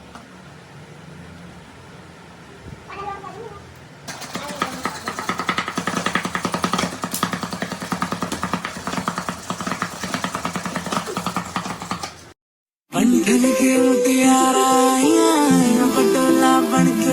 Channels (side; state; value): both; identical; correlation 1.00